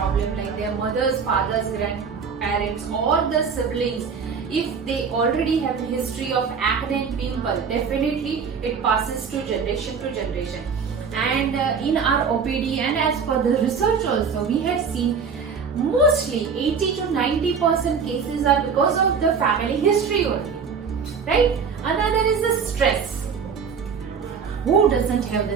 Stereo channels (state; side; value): quieter; left; 6.0 dB